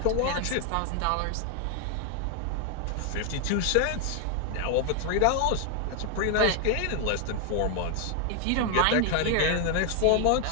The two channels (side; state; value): both; different; correlation 0.00